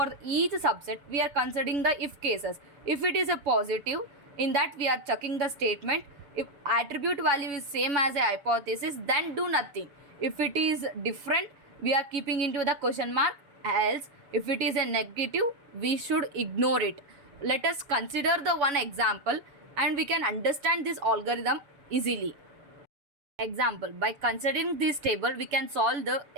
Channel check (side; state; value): left; late; 7.1 ms